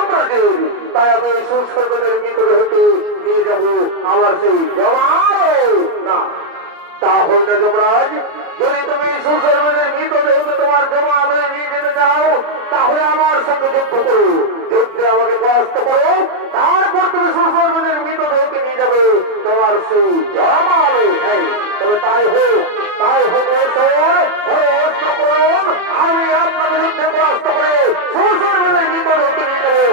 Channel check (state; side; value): late; left; 33 ms